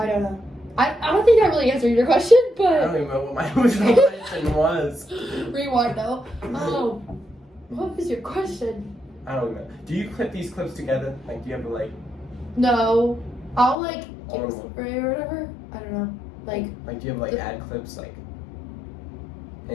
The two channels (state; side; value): drops out; right; at 13.8 s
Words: don't know. I don't think that really answered your question, but I don't even know what my original question was. Rewind though. What was your question? I don't know. Do you clip these clips together? Like, do you ever like? No, I'll like give a story or whatever. I don't know. Like do you have like ad clips like?